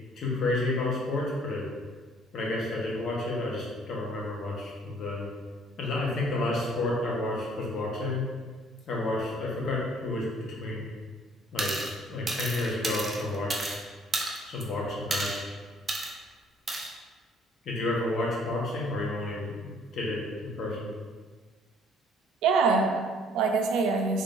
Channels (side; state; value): both; normal; correlation 0.59